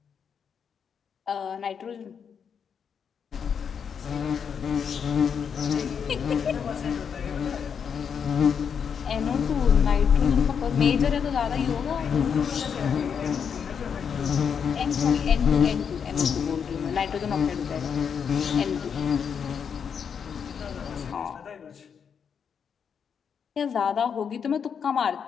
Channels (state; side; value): quieter; right; 7.0 dB